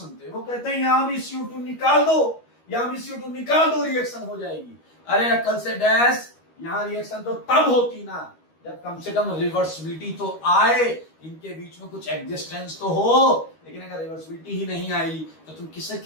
वो कहते हैं यहां भी CO2 निकाल दो, यहां भी CO2 निकाल दो, रिएक्शन हो जाएगी। अरे अकल से डैश, यहां रिएक्शन तो तब होती ना जब कम से कम रिवर्सिबिलिटी तो आए, इनके बीच में कुछ एग्जिस्टेंस तो हो। लेकिन अगर रिवर्सिबिलिटी ही नहीं आई तो तुम किसे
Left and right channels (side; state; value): right; late; 13 ms